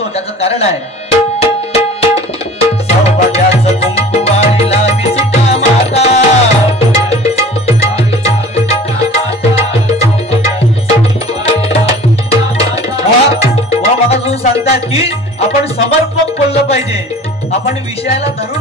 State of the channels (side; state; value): both; normal; correlation 0.44